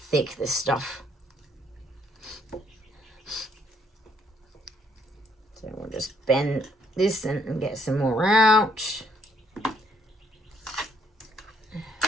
this stuff. So we'll just bend this and get some more out.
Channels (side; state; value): both; normal; correlation 0.69